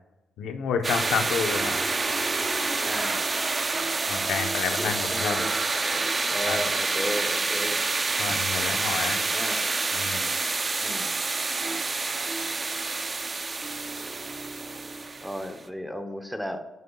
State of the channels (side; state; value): both; normal; correlation 0.87